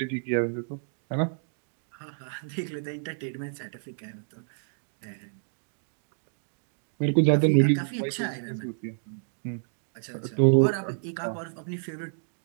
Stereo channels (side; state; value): left; silent; digital silence